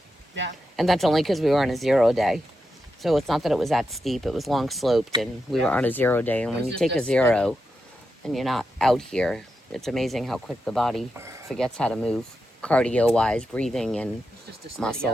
Yeah. And that's only because we were on a 0 day. So it's not that it was that steep. It was long sloped and we were on a 0 day. And when you take a 0 and you're not out here, it's amazing how quick the body forgets how to move. Cardio-wise, breathing and It's just a steady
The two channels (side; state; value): both; normal; correlation 0.87